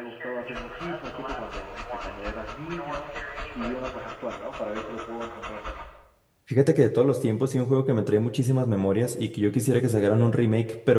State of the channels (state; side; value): identical; both; correlation 1.00